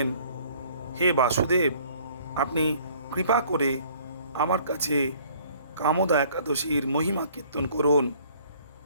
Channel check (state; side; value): inverted; both; correlation -0.56